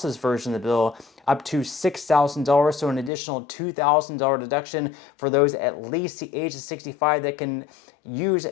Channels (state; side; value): drops out; right; at 3.1 s